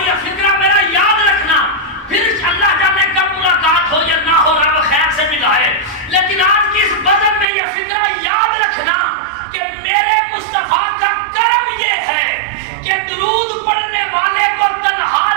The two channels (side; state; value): left; drops out; at 7.5 s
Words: یہ فکرہ میرا یاد رکھنا، پھر اللہ جانے کب ملاقات ہو یا نہ ہو، رب خیر سے ملائے، لیکن آج کی اس بزم میں یہ فکرہ یاد رکھنا کہ میرے مصطفیٰ کا کرم یہ ہے کہ درود پڑھنے والے کو تنہا